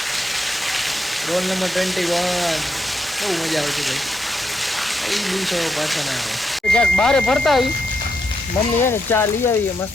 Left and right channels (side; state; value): both; normal; correlation 0.82